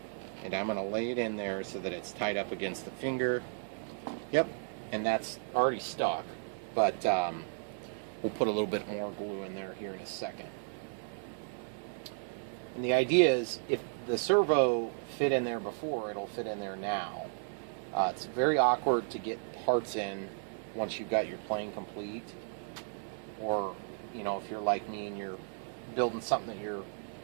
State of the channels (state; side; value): silent; left; 55 dB below the other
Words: and I'm going to lay it in there so that it's tied up against the finger. Yep, and that's already stuck, but we'll put a little bit more glue in there here in a second. And the idea is, if the servo fit in there before, it'll fit in there now. It's very awkward to get parts in once you've got your plane complete, or if you're like me and you're building something that your